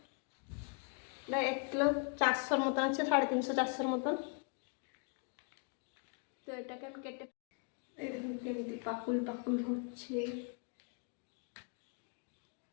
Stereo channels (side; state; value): right; quieter; 38.9 dB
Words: 1 কিলো 400 মতন আছে, 350-400 মতন। তো এটাকে আমি কেটে, এই দেখুন কেমনি পাকুল পাকুল হচ্ছে,